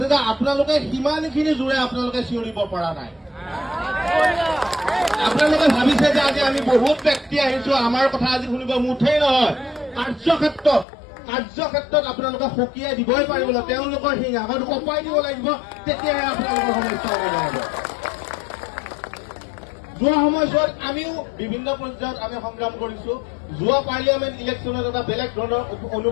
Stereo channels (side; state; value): right; drops out; at 10.9 s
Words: যে আপোনালোকে সিমানখিনি জোৰে আপোনালোকে চিঞৰিব পৰা নাই আপোনালোকে ভাবিছে যে আজি আমি বহুত ব্যক্তি আহিছো আমাৰ কথা আজি শুনিব মুঠেই নহয় কাৰ্যক্ষেত্ৰত আপোনালোকে সকীয়াই দিবই পাৰিব তেওঁলোকৰ সিংহাসন কপাই দিব লাগিব তেতিয়াহে আপোনালোকৰ সমস্যা সমাধান হ'ব যোৱা সময়ছোৱাত আমিও বিভিন্ন পৰ্যায়ত আমি সংগ্ৰাম কৰিছো যোৱা পাৰ্লিয়ামেণ্ট ইলেকশ্যনত এটা বেলেগ ধৰণৰ